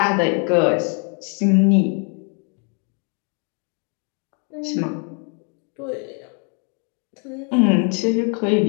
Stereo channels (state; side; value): quieter; right; 38.7 dB